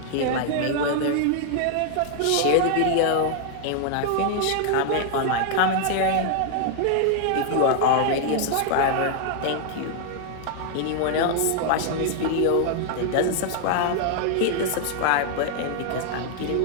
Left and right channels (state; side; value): different; both; correlation 0.00